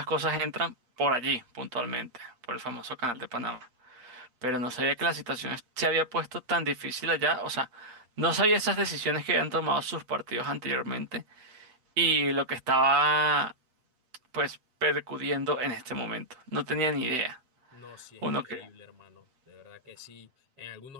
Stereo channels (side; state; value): left; late; 7.8 ms